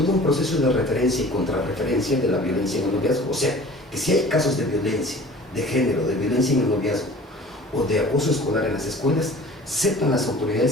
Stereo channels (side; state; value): both; normal; correlation 0.45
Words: un proceso de referencia y contrarreferencia de la violencia en el noviazgo. O sea, que si hay casos de violencia, de género, de violencia en el noviazgo o de acoso escolar en las escuelas, sepan las